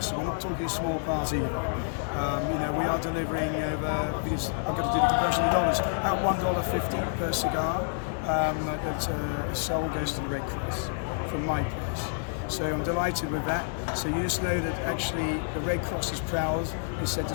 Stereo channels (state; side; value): silent; right; 59 dB below the other